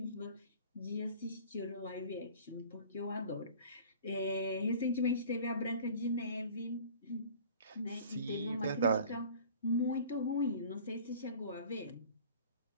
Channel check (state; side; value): inverted; both; correlation -0.45